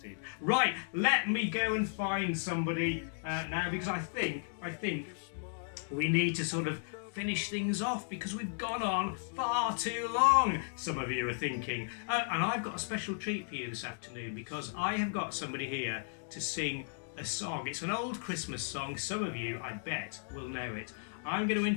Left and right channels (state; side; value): silent; right; digital silence